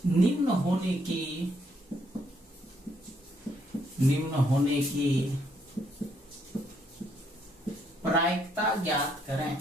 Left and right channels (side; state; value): both; normal; correlation 0.72